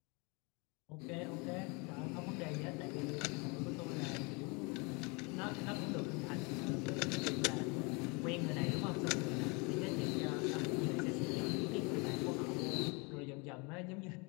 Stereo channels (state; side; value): quieter; right; 30.0 dB